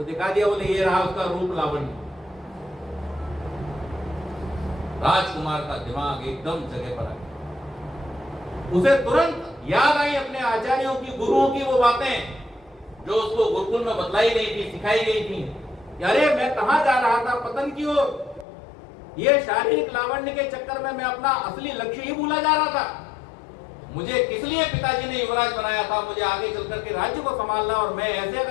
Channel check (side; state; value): right; drops out; at 18.4 s